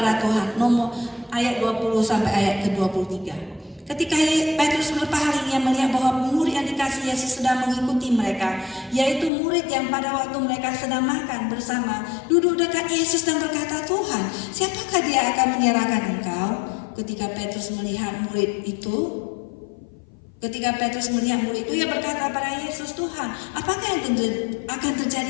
Tuhan. Nomor ayat 20 sampai ayat ke-23. Ketika Petrus berpaling, ia melihat bahwa murid yang dikasih Yesus sedang mengikuti mereka, yaitu murid yang pada waktu mereka sedang makan bersama duduk dekat Yesus dan berkata, "Tuhan, siapakah Dia akan menyerahkan Engkau?" Ketika Petrus melihat murid itu, ia berkata pada Yesus, "Tuhan, apakah yang akan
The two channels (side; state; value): right; drops out; at 9.3 s